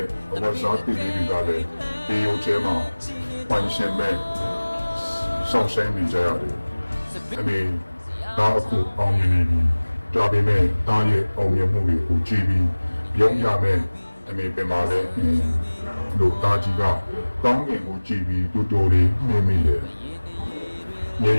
့ဝါစားပီလေးတွေကလည်းဒီရုပ်ထဲမှာပိုင်ရှင်မဲ့ဆောင်းဆိုင်နေကြရတယ်အမေဒါအခုအောင်မြင်နေပြီဒါပေမဲ့တားရဲ့အောင်မြင်မှုတွေကိုကြည့်ပြီးပြုံးရမယ်အမေပြန်လာတဲ့လို့တားကြီးကကောင်းကင်ကိုကြည့်ပြီးတူတူလေးနေမိတယ်။မြေ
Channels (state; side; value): inverted; both; correlation -1.00